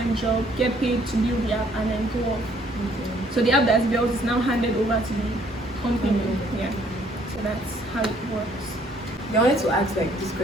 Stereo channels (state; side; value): normal; both; correlation 0.63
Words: job, get paid to build the app, and then go off. So the app that's built is now handed over to the company. Yeah. So that's how it works. I wanted to ask like this